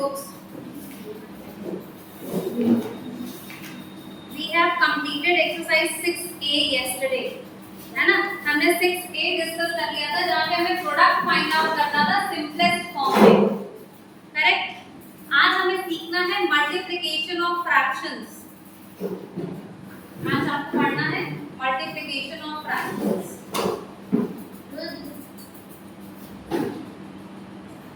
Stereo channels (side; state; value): both; identical; correlation 1.00